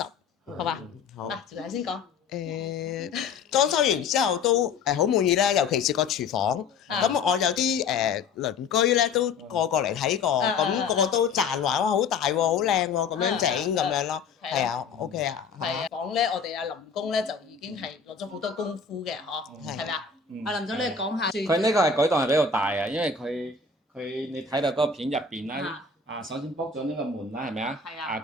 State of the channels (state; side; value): quieter; right; 5.2 dB